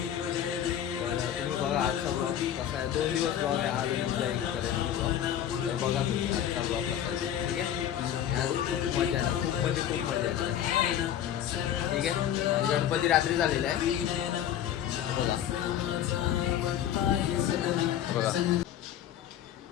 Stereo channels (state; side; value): quieter; right; 10.5 dB